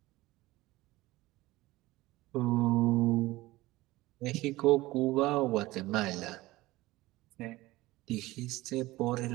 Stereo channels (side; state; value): left; quieter; 18.8 dB